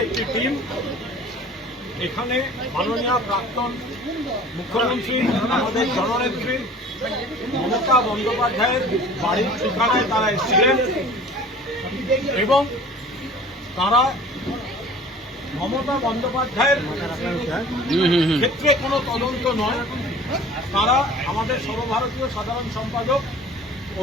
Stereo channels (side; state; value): both; normal; correlation 0.45